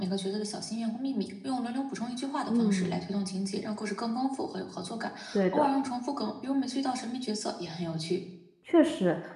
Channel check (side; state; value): both; identical; correlation 1.00